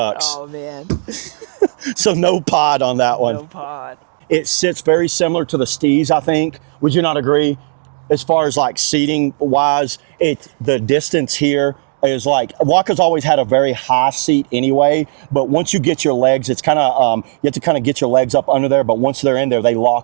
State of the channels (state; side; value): silent; left; 59 dB below the other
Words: Oh, man. So no pod on that one. No pod. It sits very similar to the Steeze, I think. Would you not agree? as far as like seating wise, the distance here is like, Waka's always had a very high seat anyway, but once you get your legs, it's kind of, you have to kind of get your legs up under there, but once they're in there, they